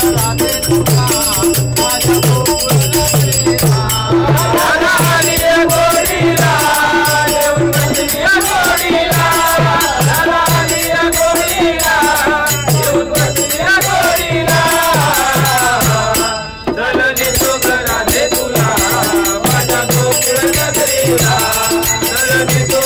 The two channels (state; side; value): identical; both; correlation 1.00